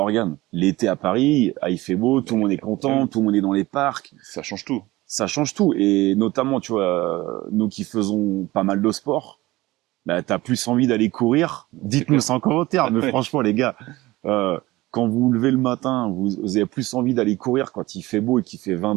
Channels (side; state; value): left; quieter; 19.0 dB